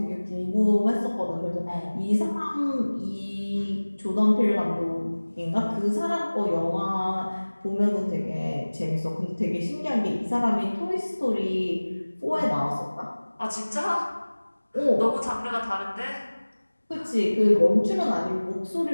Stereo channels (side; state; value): both; inverted; correlation -1.00